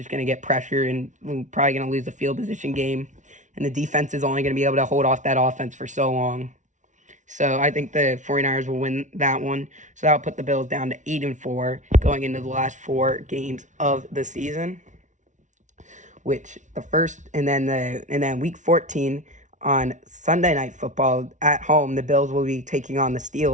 going to get pressure and we're probably going to lose the field position game. And the defense is only going to be able to hold off that offense for so long. So I think the 49ers will win that one. So that'll put the Bills down to 8-4 going into the last 4 games of the season. And then Week 14 on Sunday Night Football at home, the Bills will be taking on the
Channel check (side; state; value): left; late; 0.36 ms